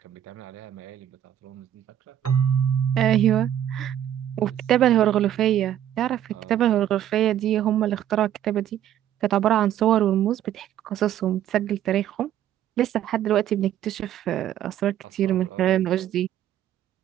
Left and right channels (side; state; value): left; quieter; 11.1 dB